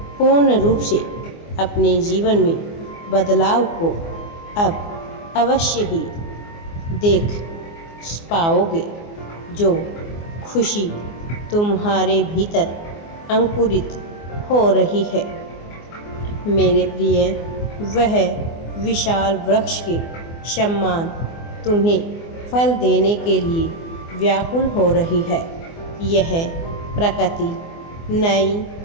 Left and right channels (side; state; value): right; late; 24 ms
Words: पूर्ण रूप से अपने जीवन में बदलाव को अब अवश्य ही देख पाओगे। जो खुशी तुम्हारे भीतर अंकुरित हो रही है, मेरे प्रिय, वह विशाल वृक्ष के समान तुम्हें फल देने के लिए व्याकुल हो रही है। यह प्रकृति नई